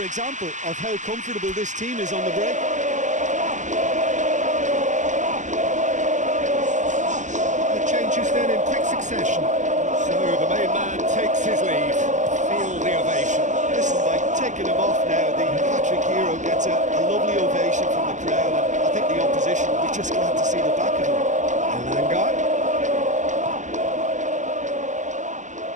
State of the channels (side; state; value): left; late; 0.35 ms